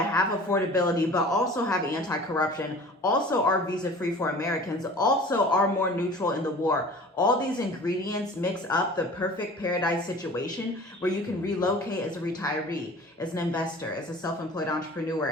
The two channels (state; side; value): normal; both; correlation 0.43